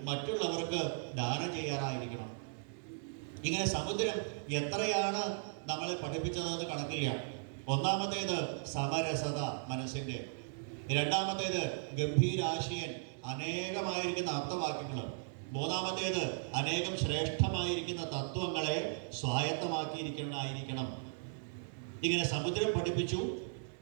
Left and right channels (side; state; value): left; silent; 53 dB below the other